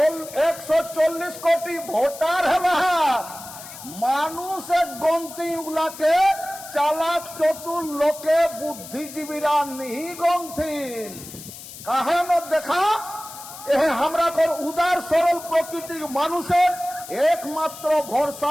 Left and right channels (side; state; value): left; noise; hiss, 14 dB below the sound